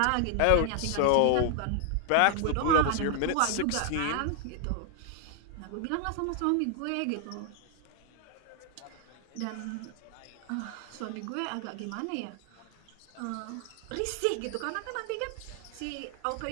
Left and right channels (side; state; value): both; different; correlation 0.00